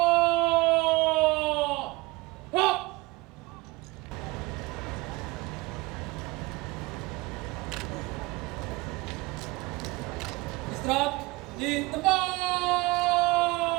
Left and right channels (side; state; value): left; quieter; 22.2 dB